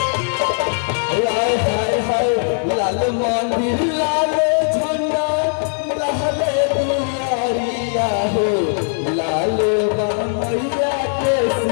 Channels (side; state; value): right; silent; 63 dB below the other